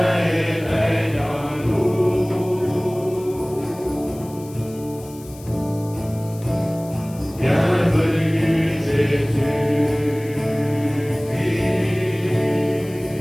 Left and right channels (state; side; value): noise; left; hiss, 21 dB below the sound